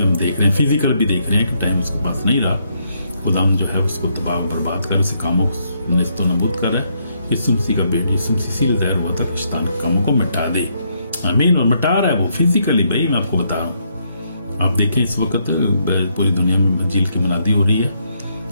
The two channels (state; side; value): inverted; both; correlation -0.75